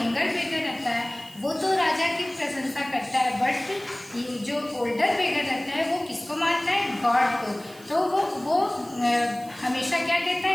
बेगर रहता है वो तो राजा की प्रशंसा करता है, बट जो ओल्डर बेगर रहता है वो किसको मानता है? गॉड को. तो वो हमेशा क्या कहता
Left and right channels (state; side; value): noise; right; hiss, 22 dB below the sound